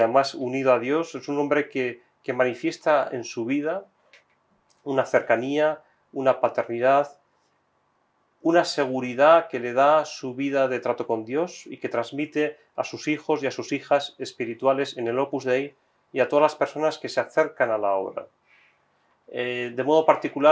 unido a Dios. Es un hombre que manifiesta en su vida una cercanía, una paternidad, una seguridad que le da su vida de trato con Dios y que transmite a sus hijos y a sus hijas espirituales en el Opus Dei y a todas las personas que se acercan a la obra. De modo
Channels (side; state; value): both; identical; correlation 1.00